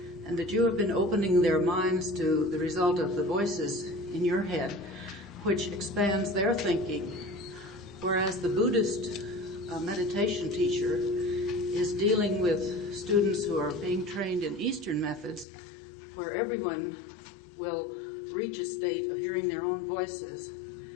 and that you have been opening their minds to the result of the voices in your head, which expands their thinking, whereas the Buddhist meditation teacher is dealing with students who are being trained in Eastern methods, where everyone will reach a state of hearing their own voices,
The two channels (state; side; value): drops out; right; at 15.5 s